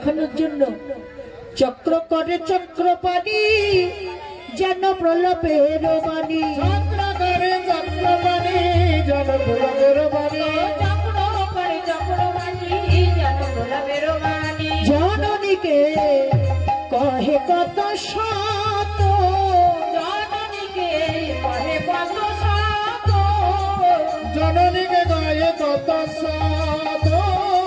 জন্য চক্র করে চক্রপাণি, যেন প্রলাপের বাণী। চক্র করে চক্রপাণি, যেন প্রলাপের বাণী। জননীকে কহে কত শত, জননীকে কহে কত শত, জননীকে গায়ে কত সাধ,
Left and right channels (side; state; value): both; identical; correlation 1.00